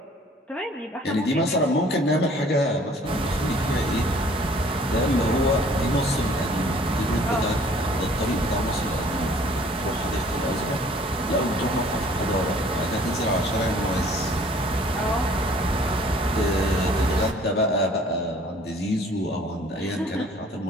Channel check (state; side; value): normal; both; correlation 0.55